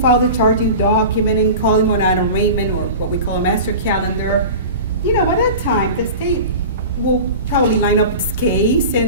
file the charging document and call him on an arraignment or what we call a master calendar, you know, by that time, the state will probably line up its case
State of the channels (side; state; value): both; inverted; correlation -0.34